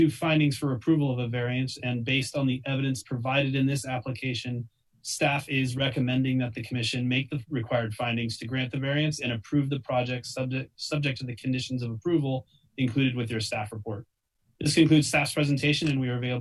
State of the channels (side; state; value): both; identical; correlation 1.00